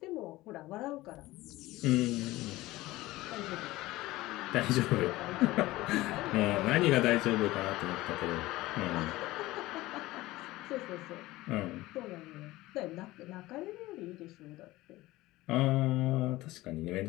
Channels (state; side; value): quieter; right; 18.4 dB